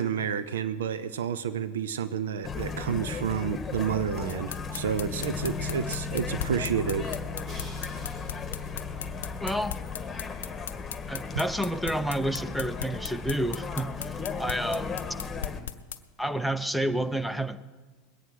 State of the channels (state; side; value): normal; both; correlation 0.23